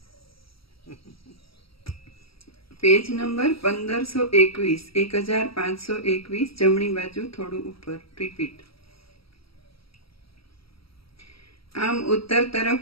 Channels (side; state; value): right; late; 0.75 ms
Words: પેજ નંબર 1521, 1521, જમણી બાજુ થોડું ઉપર. રિપીટ. આમ ઉત્તર